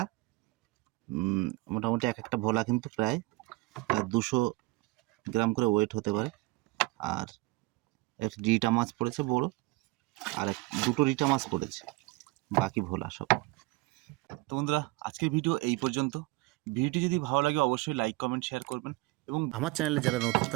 মোটামুটি এক একটা ভোলা কিন্তু প্রায় 200 গ্রাম করে ওয়েট হতে পারে। আর একটা রিটা মাছ পড়েছে বড়, আর দুটো রিটা মাছ পড়েছে, বাকি ভোলা সব। তো বন্ধুরা, আজকের ভিডিও এই পর্যন্ত। ভিডিওটি যদি ভালো লাগে অবশ্যই লাইক কমেন্ট শেয়ার করবেন, এবং আমার চ্যানেলে যারা নতুন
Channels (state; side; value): quieter; left; 21.8 dB